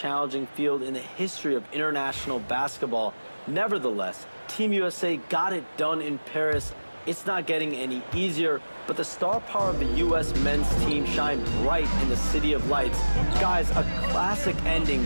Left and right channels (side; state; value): both; inverted; correlation -1.00